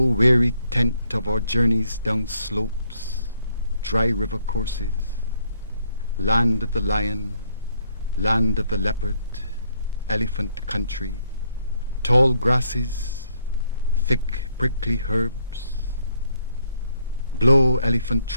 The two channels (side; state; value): both; inverted; correlation -0.72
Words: weary tent of our journeys down slopes, dry river courses, land of the lion, land of the leopard, elephant country, tall grasses, thick prickly herbs. Blow elephant